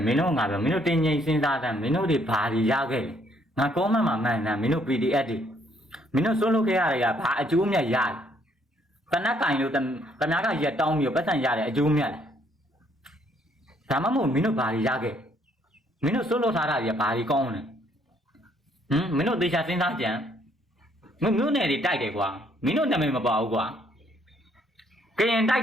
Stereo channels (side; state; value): both; normal; correlation 0.67